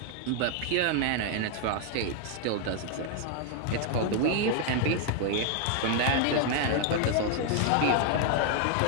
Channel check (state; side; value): different; both; correlation 0.00